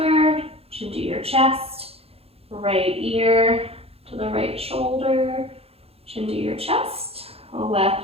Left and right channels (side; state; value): left; late; 0.29 ms